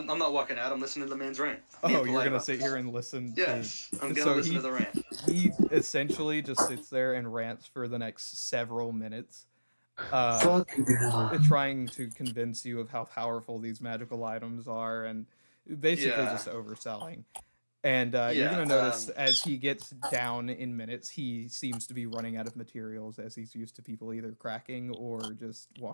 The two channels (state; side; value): inverted; both; correlation -1.00